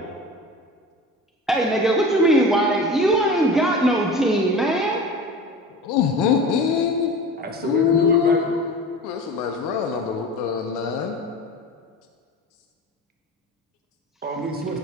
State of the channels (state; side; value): normal; both; correlation 0.35